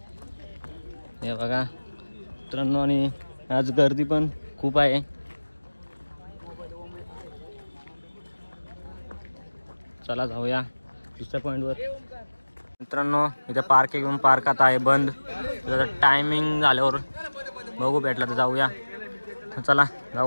हे बघा मित्रांनो आणि आज गर्दी पण खूप आहे. चला जाऊया दुसऱ्या पॉईंटवर. मित्रांनो इथे पार्क घेऊन पार्क आता आहे बंद. त्याचा टायमिंग झाल्यावर बघू भेटला तर जाऊया. चला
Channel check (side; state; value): both; inverted; correlation -1.00